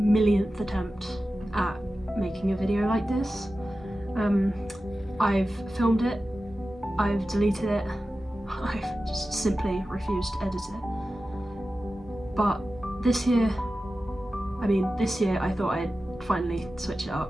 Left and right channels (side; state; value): both; normal; correlation 0.94